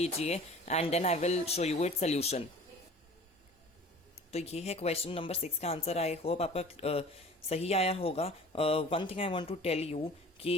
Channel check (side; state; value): both; normal; correlation 0.45